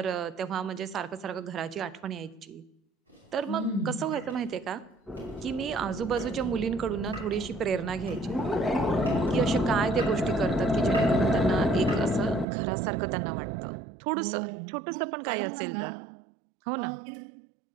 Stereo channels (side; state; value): left; drops out; at 12.5 s